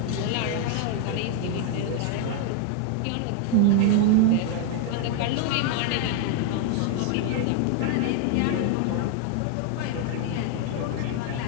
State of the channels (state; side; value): different; both; correlation 0.01